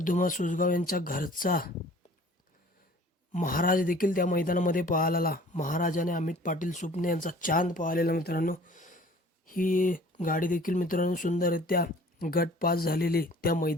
धुमा सोजगाव यांच्या घरचा महाराज देखील त्या मैदानामध्ये पळाला. महाराज आणि अमित पाटील सुपणे यांचा चांद पळालेला मित्रांनो. ही गाडी देखील मित्रांनो सुंदररित्या गट पास झालेली त्या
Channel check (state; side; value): normal; both; correlation 0.50